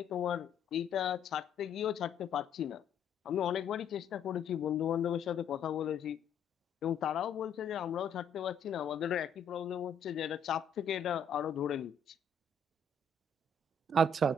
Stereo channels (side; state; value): right; quieter; 4.5 dB